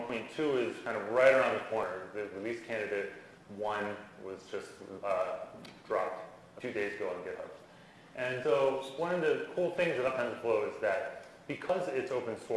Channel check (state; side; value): identical; both; correlation 1.00